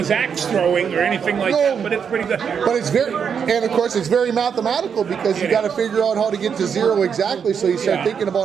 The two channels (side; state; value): left; quieter; 7.0 dB